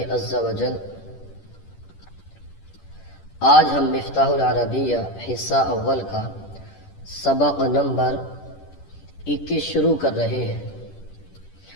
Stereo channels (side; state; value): right; late; 10 ms